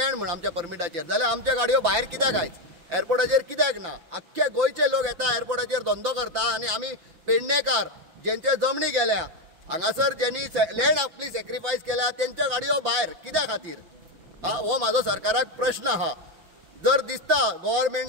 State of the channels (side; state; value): left; late; 5.9 ms